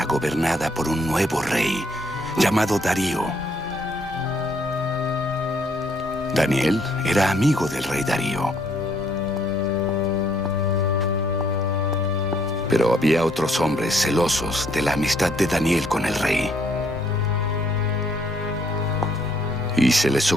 gobernada por un nuevo rey llamado Darío. Daniel era amigo del rey Darío. Pero había otros hombres celosos de la amistad de Daniel con el rey. Y se les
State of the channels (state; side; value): normal; both; correlation 0.67